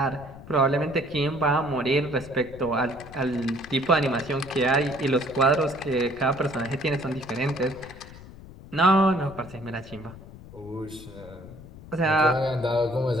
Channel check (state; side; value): noise; left; rumble, 17 dB below the sound